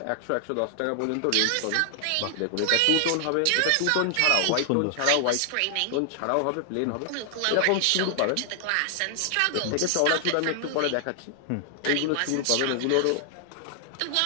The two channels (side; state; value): both; different; correlation 0.00